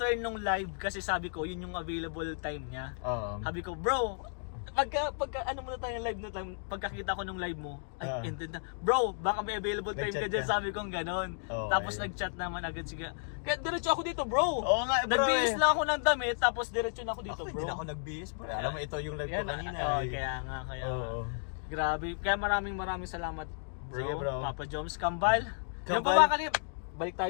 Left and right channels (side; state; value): right; silent; digital silence